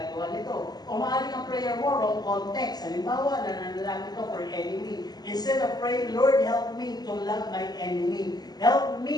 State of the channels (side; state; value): right; late; 0.20 ms